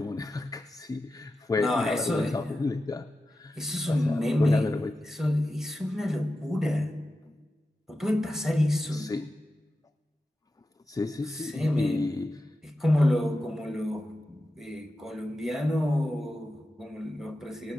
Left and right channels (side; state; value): both; normal; correlation 0.92